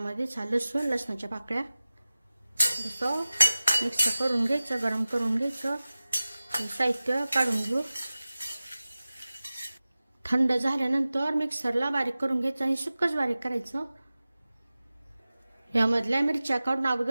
लसूण, लसणाच्या पाकळ्या असं मिक्स करून घ्यायचं, गरम करून घ्यायचं. साहित्य काढून घेऊ. थंड झाल्यानंतर मिक्सरला बारीक करून घ्यायचं आणि सुक्कच बारीक करायचं. यामधल्या मिरच्या काढून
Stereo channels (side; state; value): both; inverted; correlation -0.97